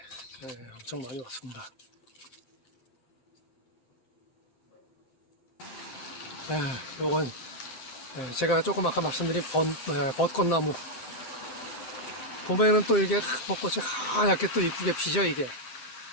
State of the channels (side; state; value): right; late; 12 ms